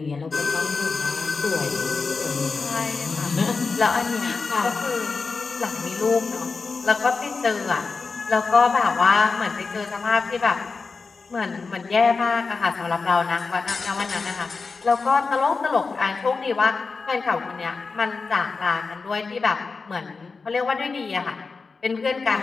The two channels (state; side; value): quieter; right; 4.5 dB